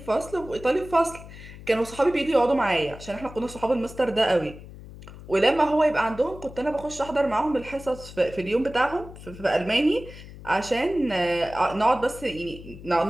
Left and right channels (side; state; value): left; noise; hum, 16 dB below the sound